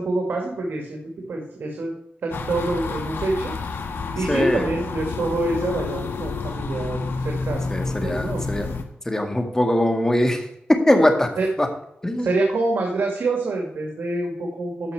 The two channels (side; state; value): both; normal; correlation 0.89